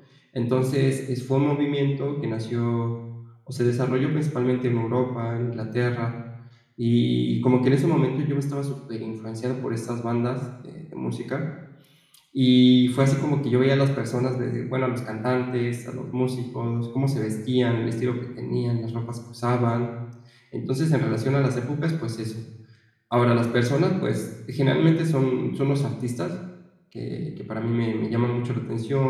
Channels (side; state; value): both; identical; correlation 1.00